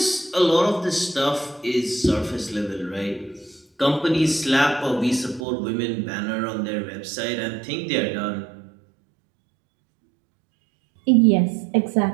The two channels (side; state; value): left; drops out; at 5.5 s